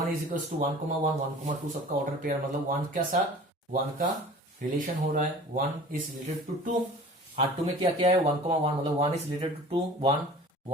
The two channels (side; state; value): both; normal; correlation 0.44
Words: is equal to 1, 1, 1, 2 सबका order pair, मतलब 1 के साथ 1 का relation हो रहा है, 1 इज रिलेटेड टू 2। R2 में क्या क्या है, 1, 1, मतलब 1 is related to 2,